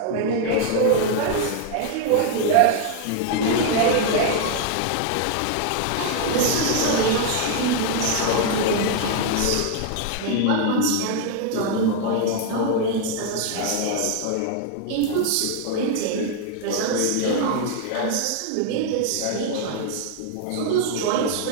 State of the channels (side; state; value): both; different; correlation 0.00